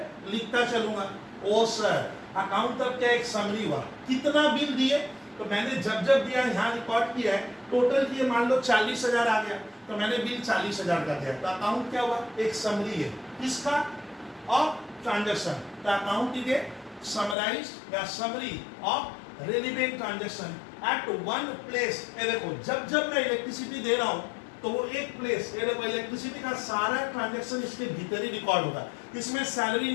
लिखता चलूंगा। ओ सर अकाउंट तब क्या एक समरी हुआ, कितना बिल दिए, तो मैंने जब जब दिया यहाँ रिकॉर्ड किया है, टोटल किए मान लो 40,000 आ गया, तो मैंने बिल 40,000 का दिया, तो अकाउंट क्या हुआ, एक समरी है किसका, ऑफ ट्रांजैक्शन। तो अकाउंट इज ए समराइज्ड या summary of relevant transaction at one place. ये देखो जब जब मैं इलेक्ट्रिसिटी दे रहा हूं, तो वो एक प्लेस, ये देखो इलेक्ट्रिसिटी का सारा ट्रांजैक्शन इसके भीतर ही रिकॉर्ड होगा, इसमें सैलरी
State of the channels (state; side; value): drops out; right; at 17.4 s